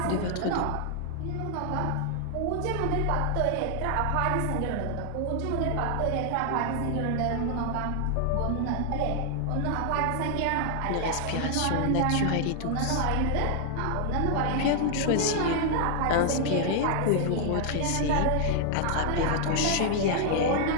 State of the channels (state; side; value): different; both; correlation 0.00